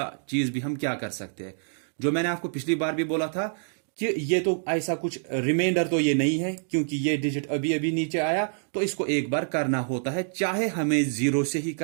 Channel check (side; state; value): left; silent; digital silence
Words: चीज भी हम क्या कर सकते हैं। जो मैंने आपको पिछली बार भी बोला था कि ये तो ऐसा कुछ रिमाइंडर तो ये नहीं है, क्योंकि ये डिजिट अभी अभी नीचे आया, तो इसको एक बार करना होता है, चाहे हमें 0 से ही